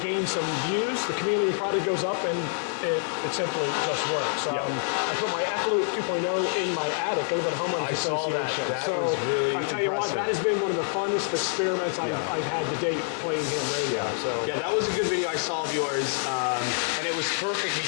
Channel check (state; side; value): silent; right; 60 dB below the other